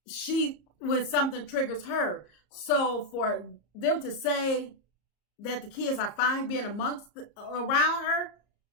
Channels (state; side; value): late; right; 34 ms